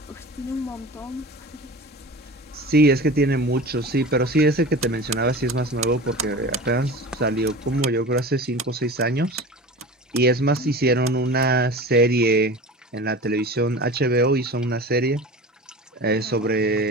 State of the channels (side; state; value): both; normal; correlation 0.34